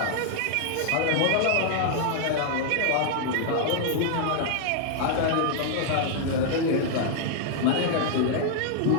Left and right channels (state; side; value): different; both; correlation -0.01